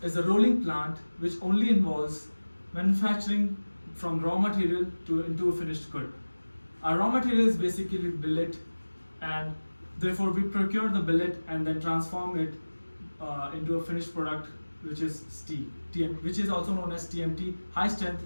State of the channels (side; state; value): both; inverted; correlation -1.00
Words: is a rolling plant which only involves manufacturing from raw material into a finished good. Our raw material is basically billet, and therefore we procure the billet and then transform it into a finished product, which is steel, which is also known as TMT, high strength